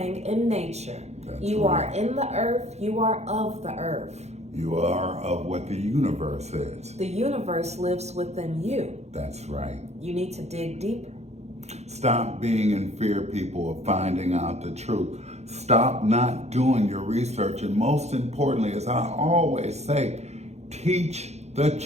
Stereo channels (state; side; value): late; left; 0.32 ms